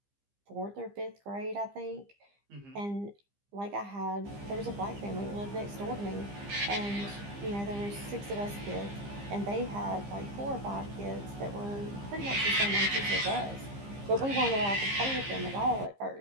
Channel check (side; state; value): left; late; 15 ms